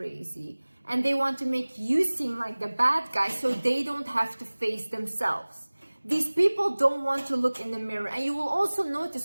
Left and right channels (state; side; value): inverted; both; correlation -1.00